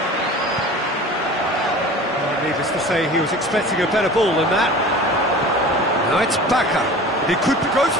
Needless to say, he was expecting a better ball than that. Now it's Bacca. He could be goes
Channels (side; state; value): both; normal; correlation 0.39